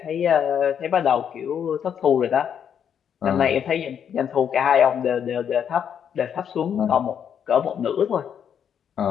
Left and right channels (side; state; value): right; quieter; 8.3 dB